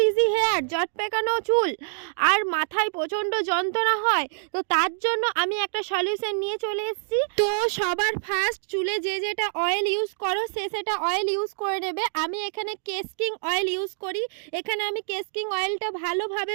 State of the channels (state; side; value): silent; left; digital silence